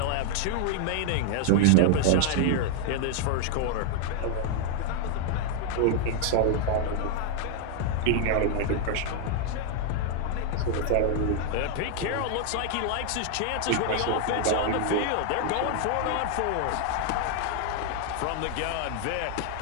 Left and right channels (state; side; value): different; both; correlation 0.00